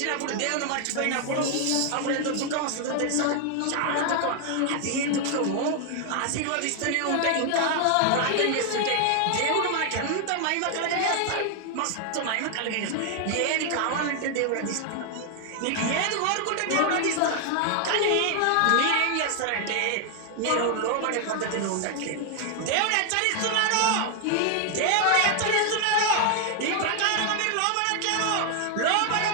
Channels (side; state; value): both; different; correlation 0.00